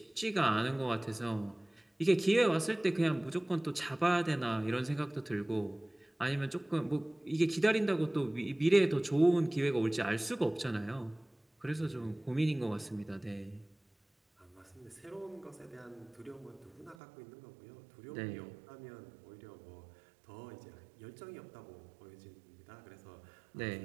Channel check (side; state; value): left; drops out; at 16.9 s